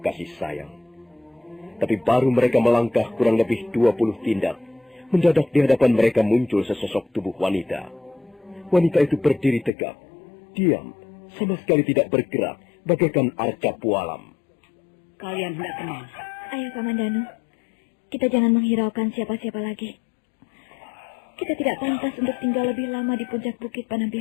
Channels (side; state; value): right; drops out; at 9.7 s